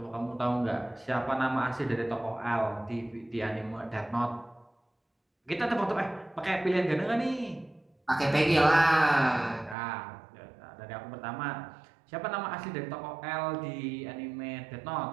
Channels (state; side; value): drops out; left; at 9.8 s